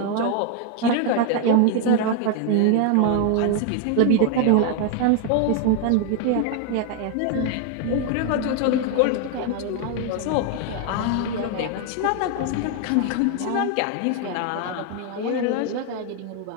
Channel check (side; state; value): both; different; correlation 0.01